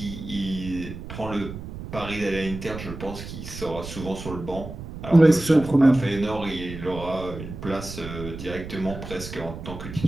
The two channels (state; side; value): noise; right; rumble, 10 dB below the sound